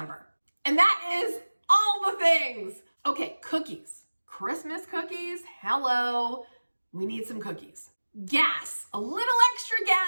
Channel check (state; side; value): inverted; both; correlation -1.00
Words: And that is all the things. Okay, cookies. Christmas cookies. Hello. We need some cookies. Gas. A little extra